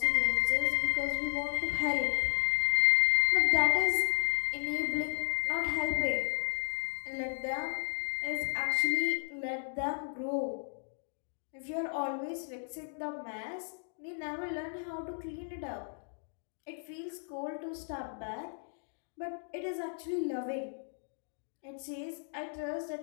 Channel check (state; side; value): silent; right; digital silence